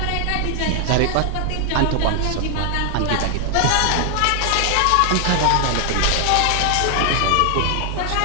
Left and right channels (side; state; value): both; different; correlation 0.00